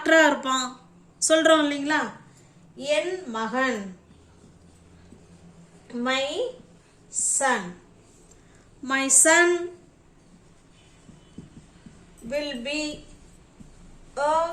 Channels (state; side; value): identical; both; correlation 1.00